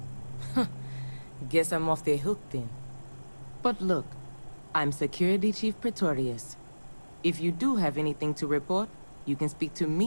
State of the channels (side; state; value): both; inverted; correlation -1.00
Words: Guess I'm off the hook then. But look, I'm Security Chief Pretorius. If you do have anything to report, you can speak to